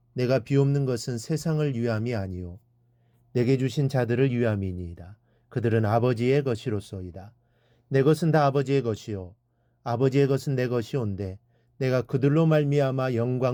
내가 비옵는 것은 세상을 위함이 아니요 내게 주신 자들을 위함이니이다. 그들은 아버지의 것이로소이다. 내 것은 다 아버지의 것이요 아버지의 것은 내 것이온데 내가 그들로 말미암아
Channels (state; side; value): identical; both; correlation 1.00